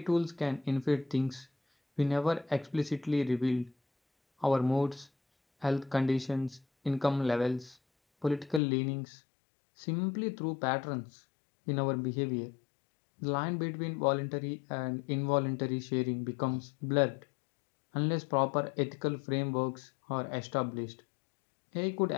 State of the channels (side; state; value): right; drops out; at 8.6 s